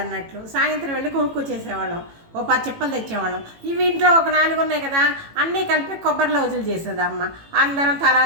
అన్నట్లు. సాయంత్రం వెళ్ళి కొనుక్కొచ్చేసేవాళ్ళం, ఓ 10 చిప్పలు తెచ్చేవాళ్ళం. ఇవి ఇంట్లో ఒక 4 ఉన్నాయి కదా, అన్నీ కలిపి కొబ్బరి లౌజులు చేసేది అమ్మ. అందరం తలా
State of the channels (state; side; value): late; left; 18 ms